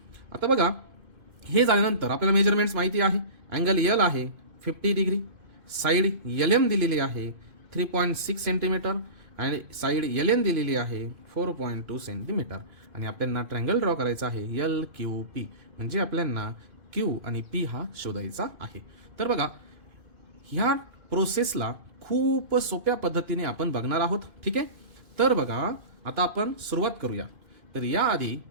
आता बघा हे झाल्यानंतर आपल्याला मेजरमेंट्स माहिती आहे. अँगल एल आहे 50 डिग्री, साईड एल एम दिलेली आहे 3.6 सेंटीमीटर आणि साईड एल एन दिलेली आहे 4.2 सेंटीमीटर आणि आपल्याला ट्रँगल ड्रॉ करायचा आहे एल क्यू पी. म्हणजे आपल्याला क्यू आणि पी हा शोधायचा आहे. तर बघा ह्या प्रोसेसला खूप सोप्या पद्धतीने आपण बघणार आहोत. ठीक आहे. तर बघा आता आपण सुरुवात करूया. तर याआधी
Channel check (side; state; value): left; late; 2.5 ms